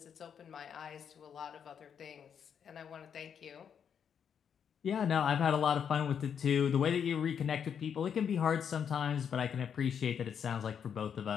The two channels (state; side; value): quieter; right; 7.7 dB